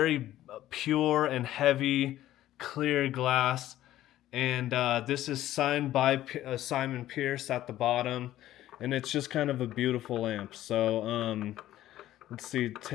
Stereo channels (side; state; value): right; quieter; 13.8 dB